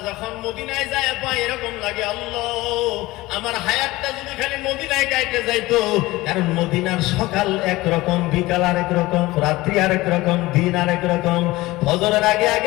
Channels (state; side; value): quieter; right; 19.3 dB